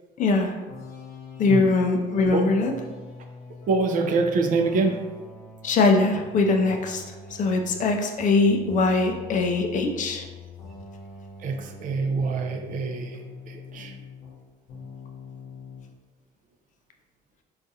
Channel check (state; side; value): normal; both; correlation 0.44